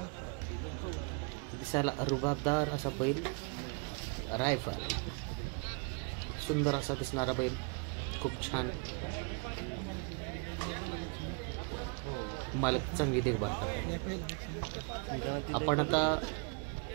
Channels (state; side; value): quieter; left; 34.5 dB